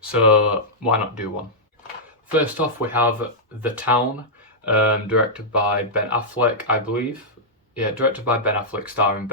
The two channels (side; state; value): both; normal; correlation -0.10